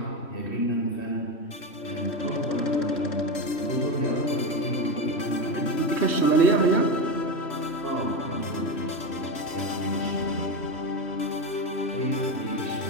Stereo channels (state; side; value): late; right; 3.1 ms